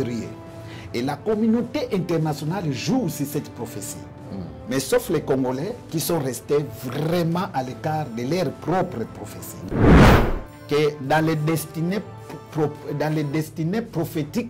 Et la communauté internationale joue sur cette prophétie. Mais sauf les Congolais qui sont restés vraiment à l'écart de leur propre prophétie. Que dans les destinées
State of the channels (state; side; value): identical; both; correlation 1.00